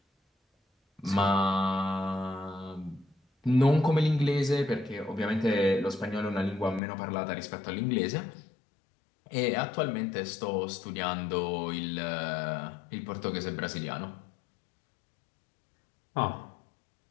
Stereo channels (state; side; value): drops out; right; at 6.8 s